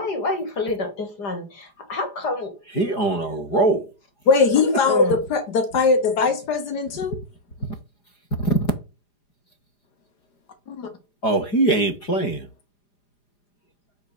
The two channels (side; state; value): right; late; 4.9 ms